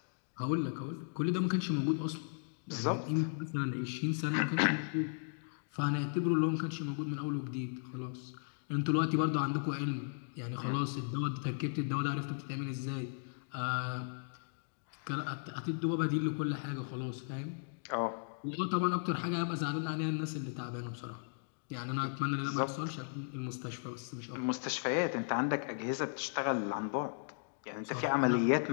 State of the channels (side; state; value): right; silent; digital silence